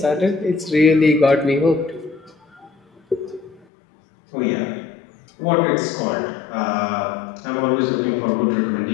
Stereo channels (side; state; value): right; drops out; at 3.7 s